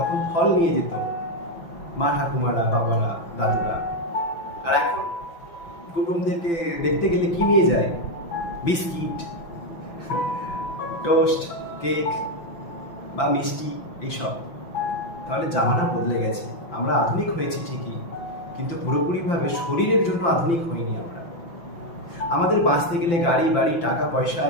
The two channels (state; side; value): late; right; 5.9 ms